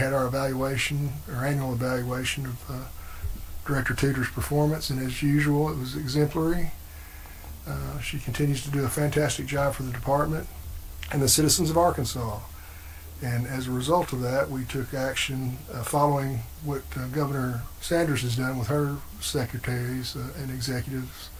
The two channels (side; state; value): both; identical; correlation 1.00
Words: our evaluation, our annual evaluation of Director Tudor's performance, and as usual, it was exemplary. She continues to do a fantastic job for the department and the citizens of Arkansas. And as a result of that, we took action following what Governor Sanders has done with her secretaries and executives,